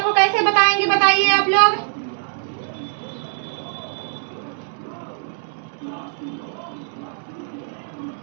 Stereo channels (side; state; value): left; silent; 64 dB below the other